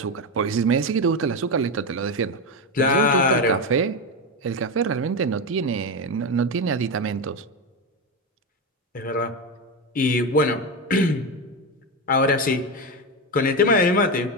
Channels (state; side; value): normal; both; correlation 0.13